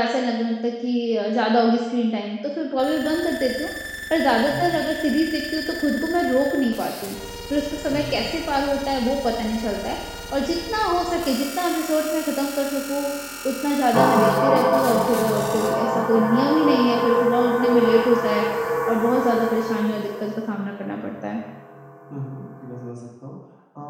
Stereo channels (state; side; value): identical; both; correlation 1.00